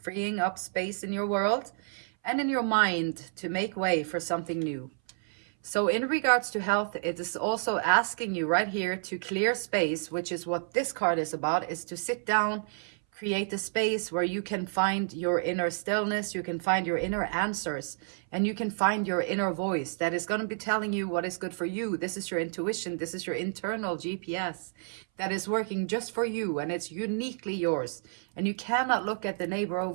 freeing up space in your world and in your mind to make way for something new. So in regards to health, it is also asking you right here to clear space, which is what this card is about, is to sit down, create a space where you can find your inner stillness, you can find your inner answers, and you can find your inner voice that is going to be telling you what is good for you. This is your intuition. This is your internal GPS that is working just for you, and it's uniquely yours. And you cannot look at the neighbor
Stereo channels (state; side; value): silent; left; 58 dB below the other